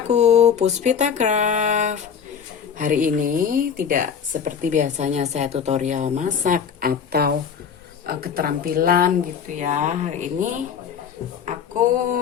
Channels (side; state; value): right; quieter; 7.3 dB